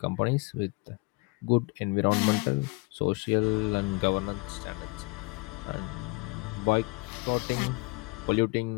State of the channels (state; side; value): quieter; right; 27.6 dB